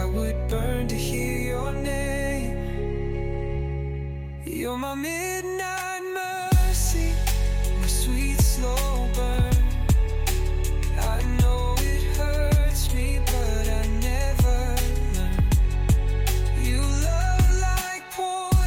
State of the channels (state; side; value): identical; both; correlation 1.00